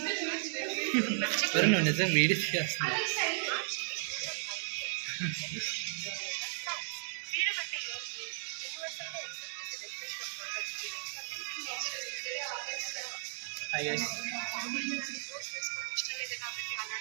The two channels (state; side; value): silent; left; digital silence